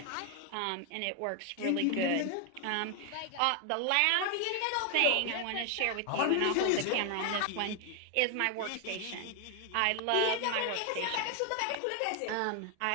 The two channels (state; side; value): different; both; correlation 0.00